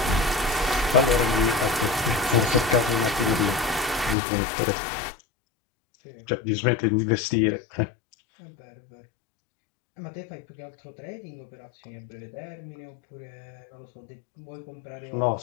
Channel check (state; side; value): drops out; right; at 4.2 s